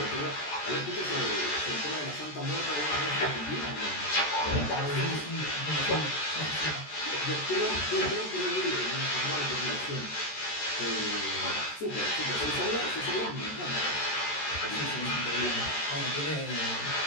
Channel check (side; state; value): right; late; 14 ms